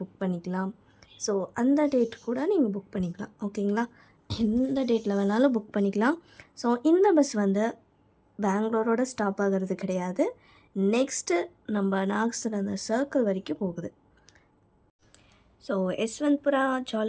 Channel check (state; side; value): identical; both; correlation 1.00